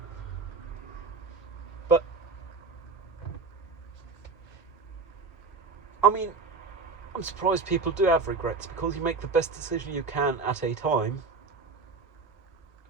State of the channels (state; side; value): quieter; left; 4.3 dB